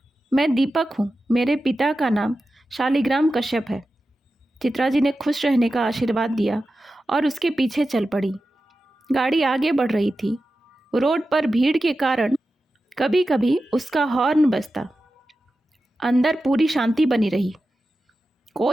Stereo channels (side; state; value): both; normal; correlation 0.92